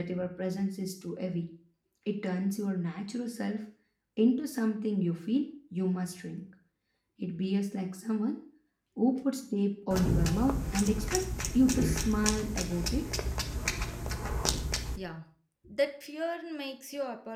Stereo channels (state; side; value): identical; both; correlation 1.00